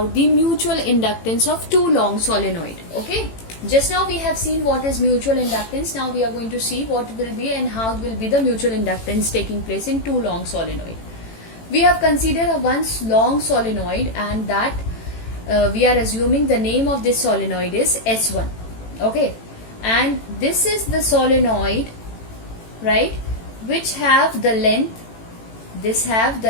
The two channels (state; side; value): late; right; 18 ms